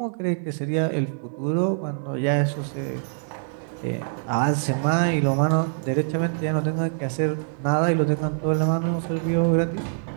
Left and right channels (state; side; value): silent; left; digital silence